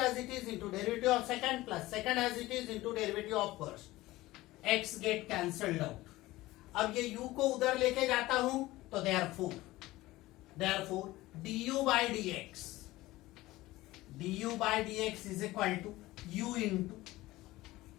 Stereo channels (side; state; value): right; quieter; 18.1 dB